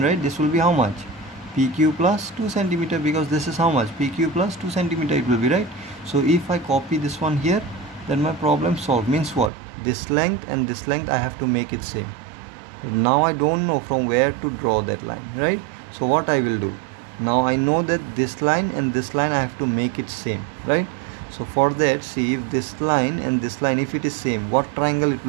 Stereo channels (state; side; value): drops out; left; at 9.5 s